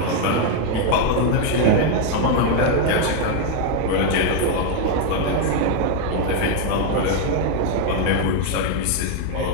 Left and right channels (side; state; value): both; different; correlation 0.01